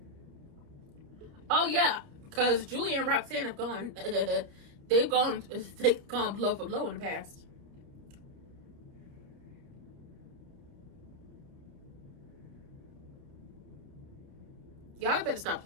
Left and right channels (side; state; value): left; late; 29 ms